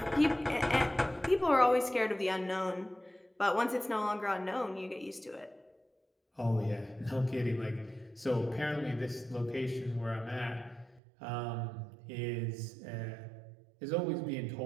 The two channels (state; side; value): drops out; left; at 11.0 s